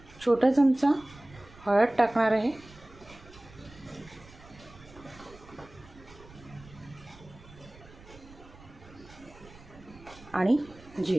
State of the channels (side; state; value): right; noise; rumble, 21 dB below the sound